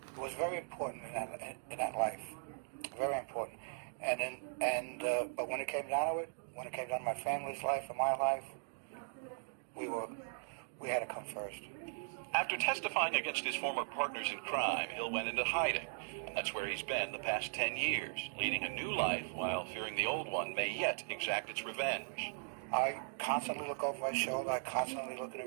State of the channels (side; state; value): left; silent; digital silence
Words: It was very important in that life. Very important. But when it came down to it, when it came down to my family's life and my life, we had to come first. After testifying against his former partners in crime, Hill went into hiding. And that's where he's been the past 10 years, leading a new life while fearing the old one may yet exact its revenge. I constantly look over my shoulder. I constantly look in the